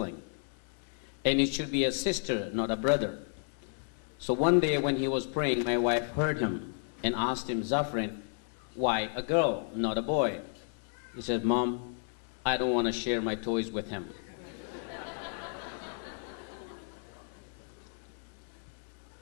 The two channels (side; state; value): right; silent; 56 dB below the other